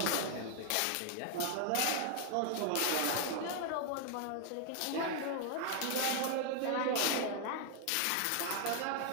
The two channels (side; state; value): both; different; correlation 0.00